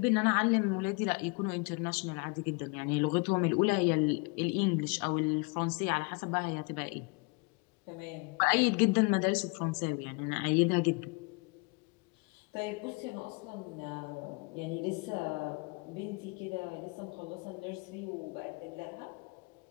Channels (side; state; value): right; quieter; 30.0 dB